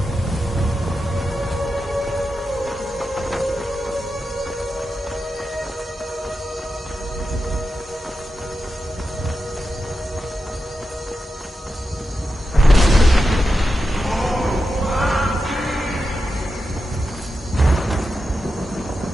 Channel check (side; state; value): both; normal; correlation 0.89